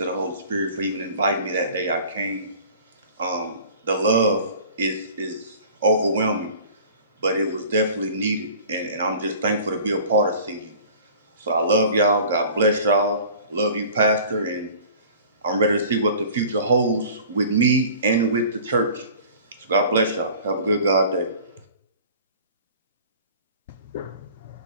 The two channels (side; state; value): both; inverted; correlation -0.45